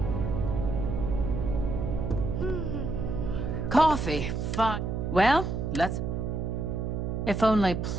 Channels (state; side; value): noise; right; hum, 2 dB below the sound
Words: Coffee. Fine. Well, let's... If only